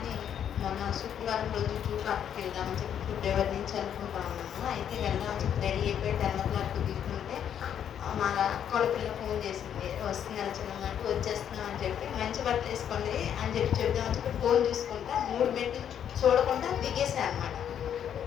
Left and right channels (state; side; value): quieter; right; 9.2 dB